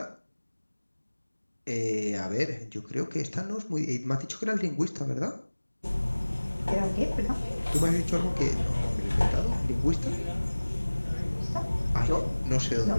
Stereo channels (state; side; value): inverted; both; correlation -1.00